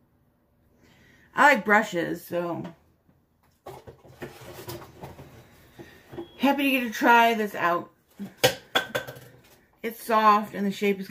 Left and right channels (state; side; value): identical; both; correlation 1.00